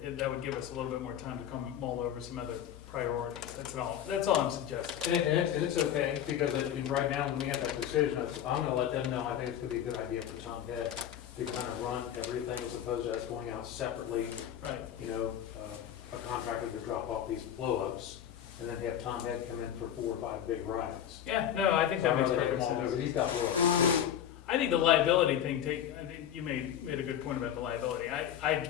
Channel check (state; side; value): quieter; right; 10.1 dB